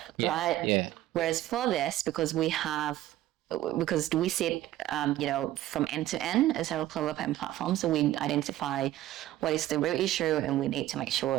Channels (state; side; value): quieter; left; 14.3 dB